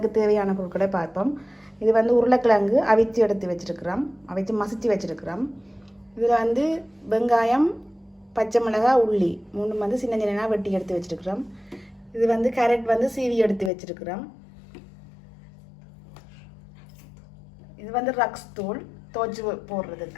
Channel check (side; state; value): right; drops out; at 13.7 s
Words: தேவையான பொருட்களை பார்ப்போம். இது வந்து உருளைக்கிழங்கு அவிச்சு எடுத்து வச்சுருக்கிறோம், அவிச்சு மசிச்சு வச்சுருக்கிறோம். இதில் வந்து வெங்காயம், பச்சை மிளகாய், உள்ளி மூணு வந்து சின்ன சின்னதாக வெட்டி எடுத்து வச்சுருக்கிறோம். இது வந்து கேரட் வந்து சீவி எடுத்து வச்சுருக்கிறோம். இது வந்து ரக்ஸ் தூள் துவச்சி